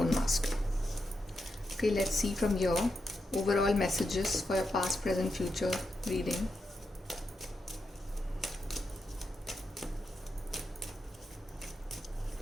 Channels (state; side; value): normal; both; correlation 0.85